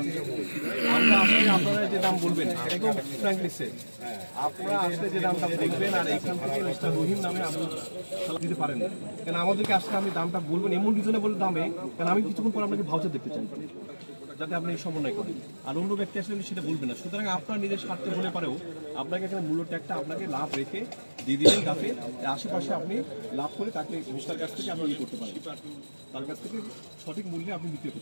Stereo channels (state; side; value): inverted; both; correlation -1.00